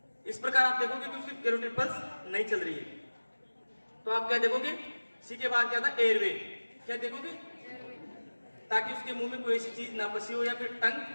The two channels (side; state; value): both; inverted; correlation -1.00